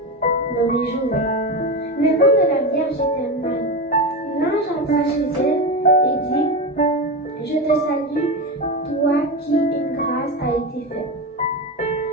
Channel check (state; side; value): normal; both; correlation 0.18